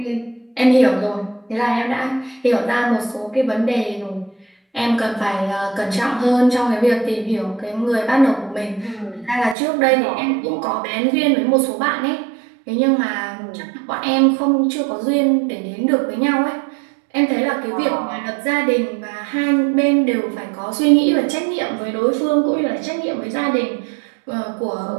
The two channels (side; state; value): left; drops out; at 9.6 s